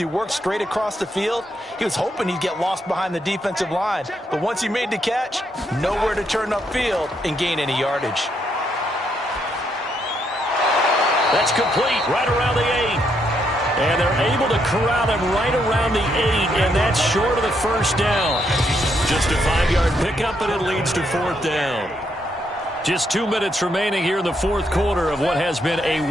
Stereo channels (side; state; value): both; normal; correlation 0.76